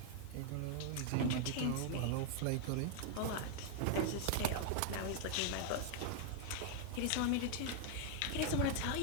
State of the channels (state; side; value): different; both; correlation 0.00